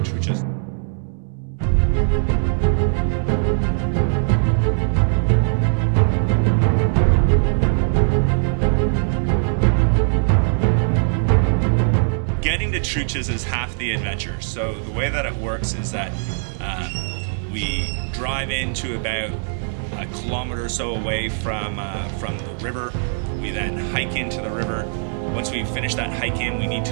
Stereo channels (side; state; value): left; silent; 65 dB below the other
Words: Truchas. Getting to Truchas is half the adventure. So the way that it works is that we drive into about a kilometer or so away from the river. We then hike into the river. Once we finish that hike in, we need